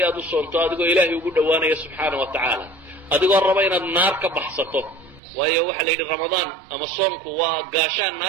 aad u soonto adigoo ilaahay ugu dhowaanaya subxaana wa tacaala, adigoo raba inaad naar ka baxsato. waayo waxaa la yidhi ramadaan ama soomku waa gaashaan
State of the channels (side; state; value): left; drops out; at 5.2 s